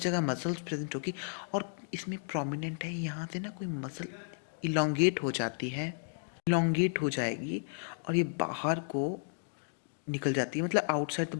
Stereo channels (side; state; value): right; silent; digital silence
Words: जगह मसल्स प्रेजेंट होगी. और इसमें प्रोमिनेंट है, यहाँ से ना कोई मसल इलोंगेट हो जाती है, इलोंगेट हो जाएगी और ये बाहर को निकल जाती है, मतलब आउटसाइड